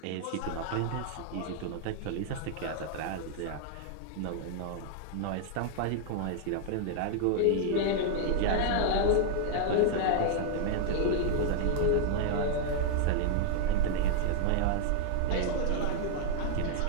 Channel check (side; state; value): both; different; correlation -0.01